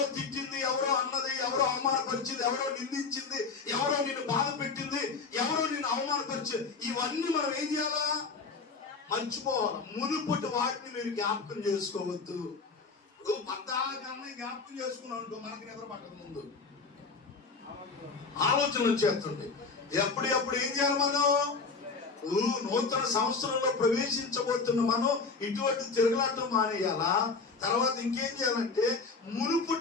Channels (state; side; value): quieter; right; 4.6 dB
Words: తిట్టింది, ఎవరో అన్నది, ఎవరో అవమానపరిచింది, ఎవరో నిందించింది, ఎవరో నిన్ను బాధ పెట్టింది, ఎవరో నిన్ను అవమానపరిచింది, ఇవన్నీ మనం ఏం చేయాలా? మర్చిపోవాలి. మునుపటి వాటిని మీరు జ్ఞాపకం చేసుకోవద్దు. పద్దాకన్నా జ్ఞాపకం చేసుకున్నాం అనుకో, మనకి నిద్ర పట్టక ముందు ఆలోచన వచ్చేస్తుంది. ఎప్పుడు ఏం చేయాలి మనం? నూతన సంవత్సరంలో ప్రవేశించబోతున్న మనం ఇటువంటి తిరగలాటం మానేయాలా? తర్వాత ఇంకేం చేయాలంటే